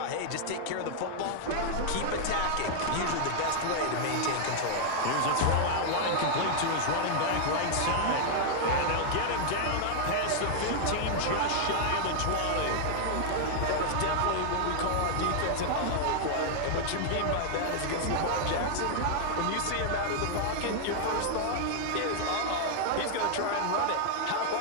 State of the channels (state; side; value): different; both; correlation -0.01